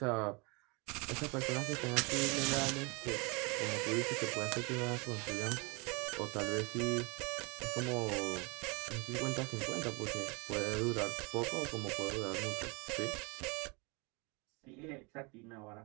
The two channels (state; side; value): quieter; left; 29.8 dB